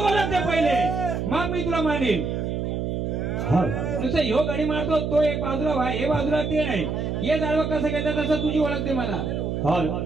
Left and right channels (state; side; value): noise; right; hum, 2 dB below the sound